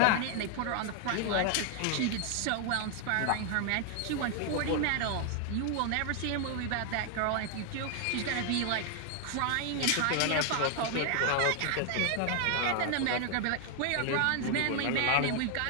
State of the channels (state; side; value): different; both; correlation 0.00